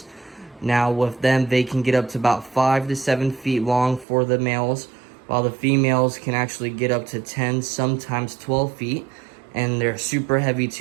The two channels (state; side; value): drops out; left; at 4.0 s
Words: Now with them, they can get up to about 5 to 7 feet long for the males, while the females can actually get up to 10, sometimes 12 feet. And they're super heavy